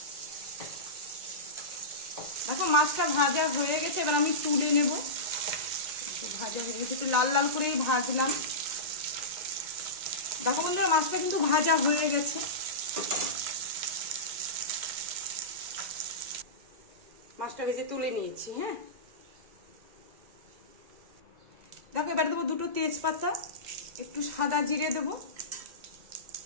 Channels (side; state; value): left; late; 1.9 ms